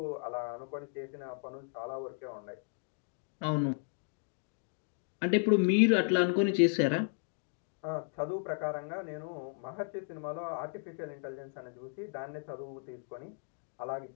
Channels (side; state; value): right; silent; 54 dB below the other